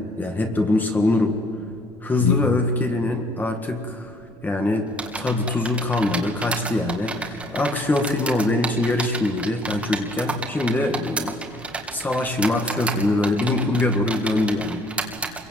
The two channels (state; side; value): noise; right; rumble, 27 dB below the sound